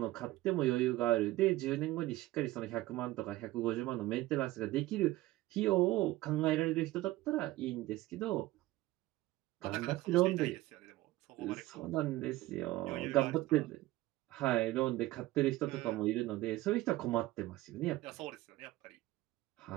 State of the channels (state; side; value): quieter; left; 17.6 dB